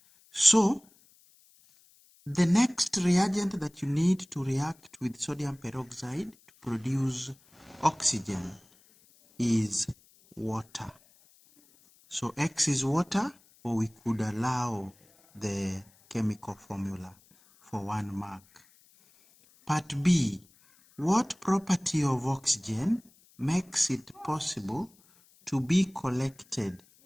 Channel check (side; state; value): left; noise; hiss, 30 dB below the sound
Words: So the next reagent that you need to react with sodium peroxide to produce oxygen is water. So X is water, or we could allow the chemical formula for 1 mark. Part B, what property of oxygen makes it possible to be collected